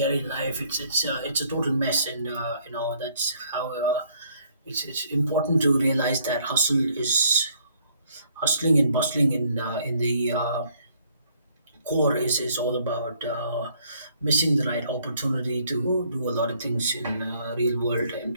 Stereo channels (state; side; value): inverted; both; correlation -0.65